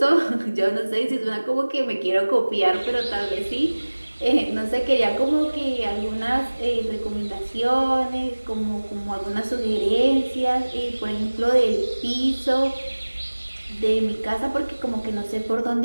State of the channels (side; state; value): both; inverted; correlation -1.00